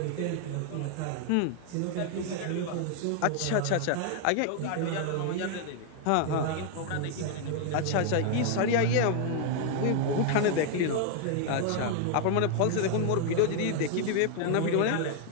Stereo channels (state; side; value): different; both; correlation 0.00